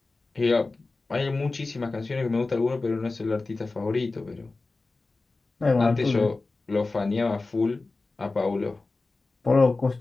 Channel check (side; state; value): right; quieter; 3.5 dB